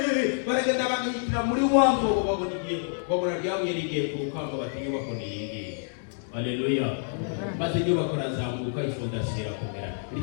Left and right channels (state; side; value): silent; right; digital silence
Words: baragenda bagihitira muri wa mwobo, babona igihe, babona ryabuye rigiye ku rukamba, bati inyubako ni iyi ngiyi. Haleluya. Maze inyubako razamuka, ifondasiyo irakomera.